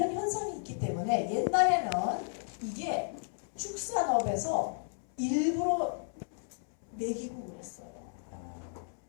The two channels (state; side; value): silent; right; 56 dB below the other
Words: 현상이 있기 때문에 옛날에는 이게 축산업에서 일부러 먹이고 그랬어요.